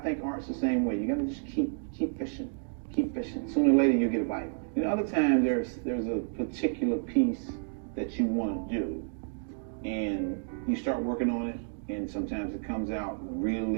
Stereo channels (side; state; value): left; silent; digital silence